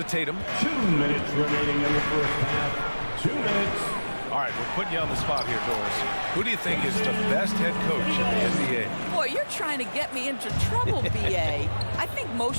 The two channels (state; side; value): inverted; both; correlation -1.00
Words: Tatum. 2 minutes remaining in the first half. 2 minutes. All right, we're putting you on the spot here, Doris. Who do you think is the best head coach in the NBA? Boy, you're trying to get me into trouble, BA. I think